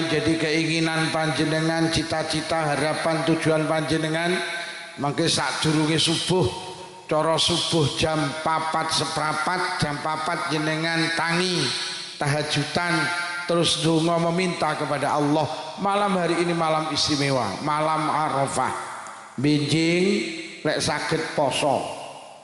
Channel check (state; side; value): identical; both; correlation 1.00